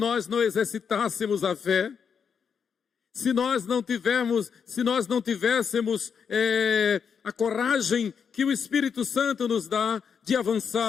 não exercitássemos a fé, se nós não tivéssemos a coragem que o Espírito Santo nos dá de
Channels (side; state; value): right; quieter; 6.8 dB